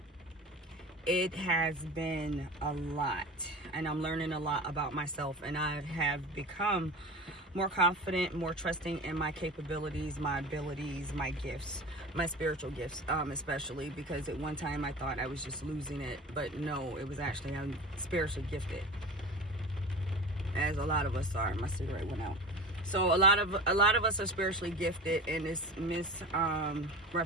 it has been a lot, and I'm learning a lot about myself, and I have become more confident, more trusting in my capabilities, my abilities, my gifts, my spiritual gifts, especially because at one time I thought I was just losing it, but no, it was actually I'm spiritually gifted, as a lot of us are. My cigarette went out. So a lot of us are spiritually gifted, and it's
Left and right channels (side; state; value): both; normal; correlation 0.33